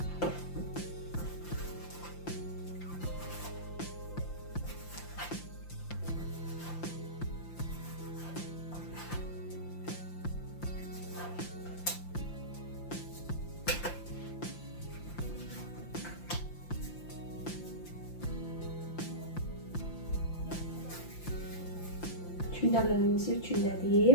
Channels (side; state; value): right; late; 5.8 ms